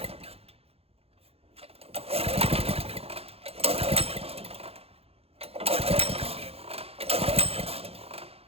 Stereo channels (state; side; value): late; left; 0.29 ms